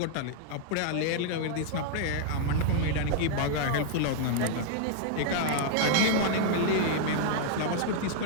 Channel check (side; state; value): both; different; correlation 0.00